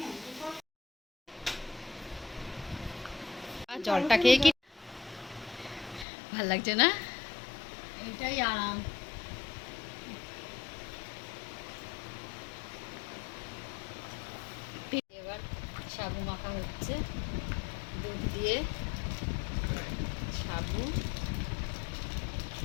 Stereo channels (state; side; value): drops out; right; at 6.1 s